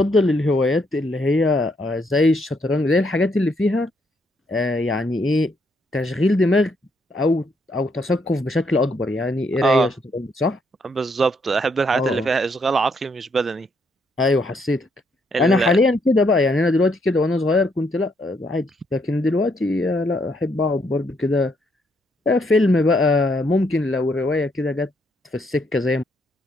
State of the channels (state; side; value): normal; both; correlation 0.73